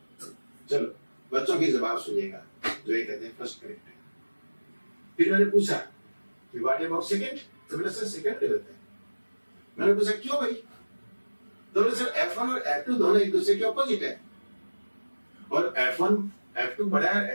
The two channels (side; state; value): both; inverted; correlation -1.00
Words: चलो बच्चों की जवाब सुनिएगा जो ये कहते हैं फर्स्ट करेक्ट है। फिर मैंने पूछा कि व्हाट अबाउट सेकंड, तो बोले सर सेकंड गलत है। मैंने पूछा क्यों भाई? तो बोले सर F1 और F2 दोनों एक दूसरे के ऑपोजिट है, और F2 बड़ा